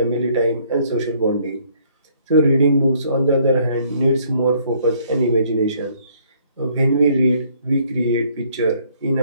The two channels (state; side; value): inverted; both; correlation -0.63